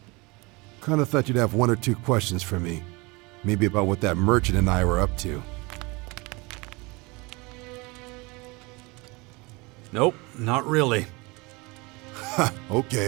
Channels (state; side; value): quieter; left; 25.8 dB